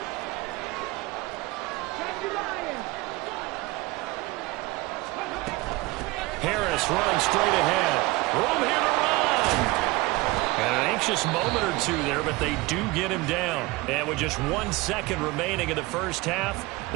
Harris running straight ahead. Room here to run. And an anxious moment or two there, but they do get him down. And with just 1 second remaining in the first half,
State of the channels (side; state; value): left; quieter; 21.6 dB